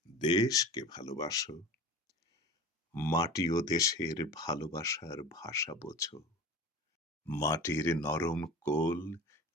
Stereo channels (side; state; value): both; normal; correlation 0.36